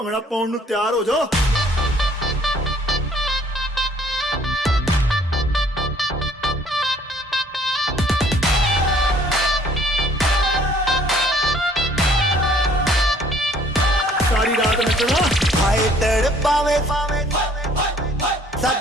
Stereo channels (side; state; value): both; normal; correlation 0.59